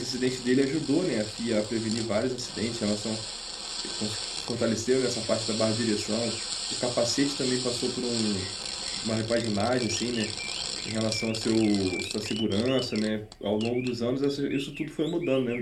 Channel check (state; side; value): identical; both; correlation 1.00